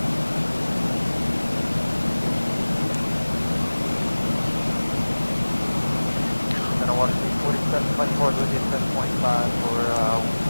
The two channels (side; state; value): both; inverted; correlation -1.00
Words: Then I want to see 4724 with you 10.5 for